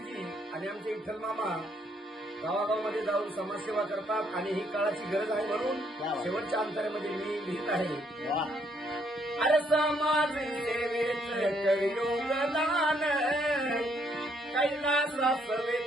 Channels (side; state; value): both; normal; correlation 0.70